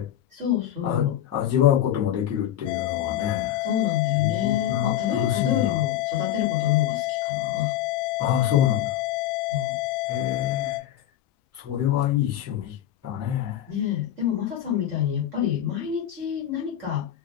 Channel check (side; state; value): right; quieter; 11.6 dB